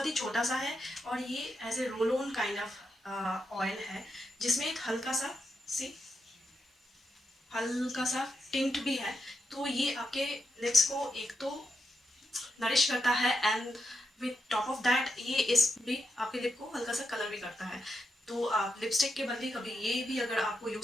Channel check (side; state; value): both; normal; correlation 0.84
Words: ही छोटा सा है और ये ऐसे roll on kind of oil है जिसमें एक हल्का सा टिंट भी है. तो ये आपके लिप्स को एक तो नरिश करता है and with top of that ये इस भी आपके लिप को हल्का सा कलर भी करता है. तो आप लिपस्टिक के बदले कभी ये भी अगर आपको